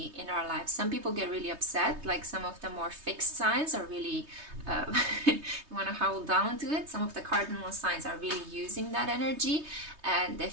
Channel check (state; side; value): late; left; 3.2 ms